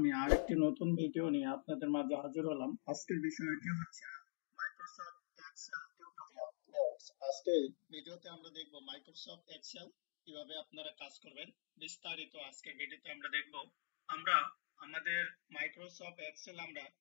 আরেকটি নতুন ভিডিও নিয়ে আপনাদের মাঝে হাজির হলাম। আজকের বিষয়টি হচ্ছে মাইক্রোসফট এক্সেল টিউটোরিয়াল। ভিউয়ার্স, আজকে ভিডিওতে আমরা দেখব মাইক্রোসফট এক্সেল কিভাবে আপনারা কাজ করবেন। বিস্তারিত আজকের ভিডিওতে আমরা দেখব। আমরা আমাদের মাইক্রোসফট এক্সেল আমরা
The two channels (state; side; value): silent; right; digital silence